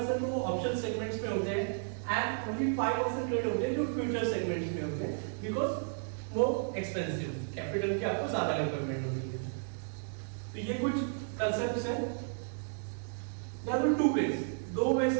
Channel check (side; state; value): left; silent; digital silence